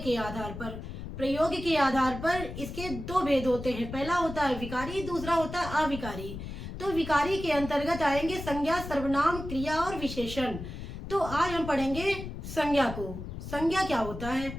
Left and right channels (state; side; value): noise; left; rumble, 9 dB below the sound